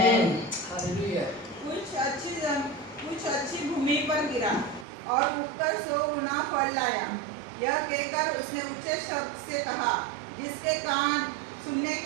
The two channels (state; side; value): drops out; left; at 4.9 s